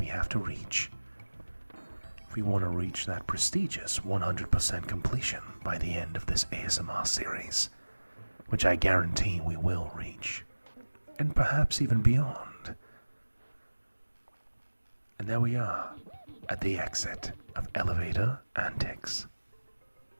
have to reach. If we want to reach that prestigious 100% completion by the end of this ASMR series, which I guarantee we will reach, and perhaps even beyond. And there we are, at the exit of Elevator Antics.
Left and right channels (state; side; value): inverted; both; correlation -1.00